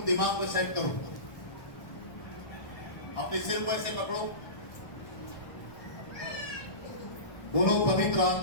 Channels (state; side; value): late; right; 1.2 ms